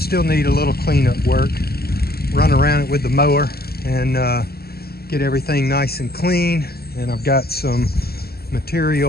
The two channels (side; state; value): right; late; 0.46 ms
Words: need a little cleanup work. Run around it with the mower and get everything nice and clean. And I've got some